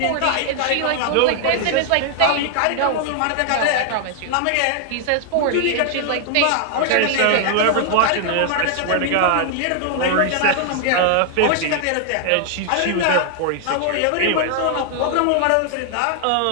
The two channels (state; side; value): different; both; correlation 0.00